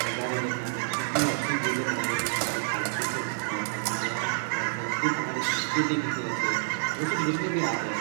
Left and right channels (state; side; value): silent; left; 59 dB below the other